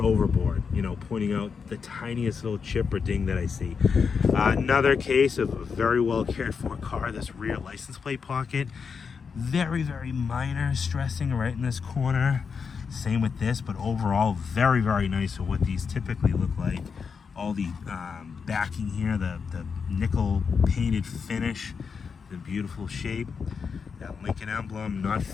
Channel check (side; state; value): right; quieter; 5.8 dB